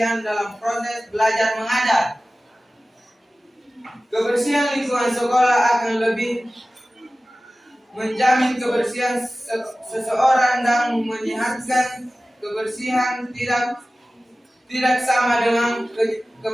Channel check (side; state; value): both; normal; correlation 0.96